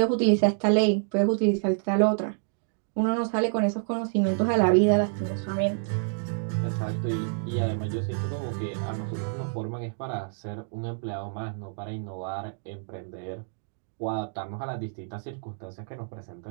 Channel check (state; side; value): silent; left; digital silence